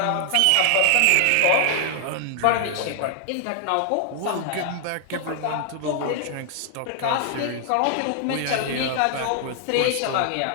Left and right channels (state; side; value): different; both; correlation 0.00